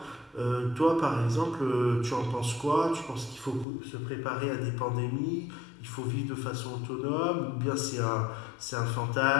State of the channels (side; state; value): right; drops out; at 3.7 s